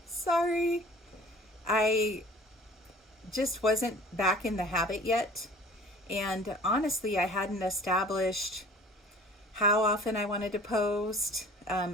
Sorry. I just wasn't back in the habit yet. And honestly, I hadn't established how often I wanted to post,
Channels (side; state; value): both; normal; correlation 0.47